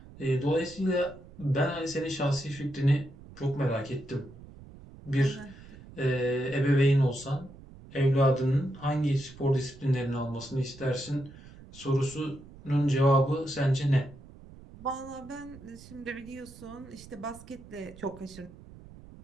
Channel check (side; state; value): right; noise; rumble, 19 dB below the sound